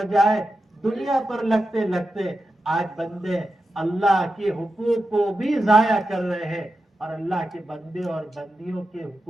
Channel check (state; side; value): normal; both; correlation 0.90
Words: دنیا پر لگتے لگتے آج بندے اللہ کے حقوق کو بھی ضائع کر رہے ہیں اور اللہ کے بندے اور بندیوں کے